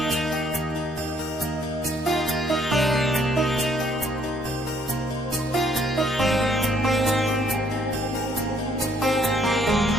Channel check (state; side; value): normal; both; correlation 0.65